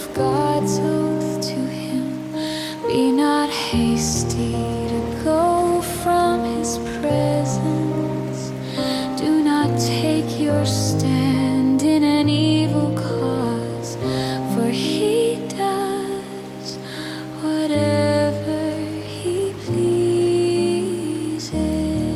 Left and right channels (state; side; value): identical; both; correlation 1.00